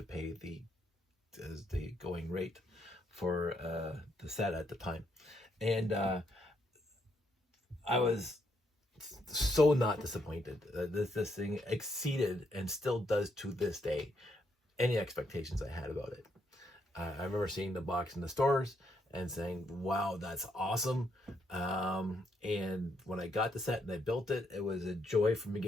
pay the going rate for the set at the time. And I was so not disappointed. This thing exceeded and still does to this day any expectations I had about it. I remember seeing the box in the stores and saying, wow, that's awesome. And when I got the set and I built it, it was a joy from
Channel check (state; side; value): normal; both; correlation 0.75